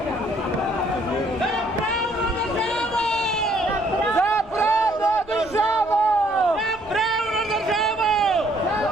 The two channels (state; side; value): noise; left; rumble, 22 dB below the sound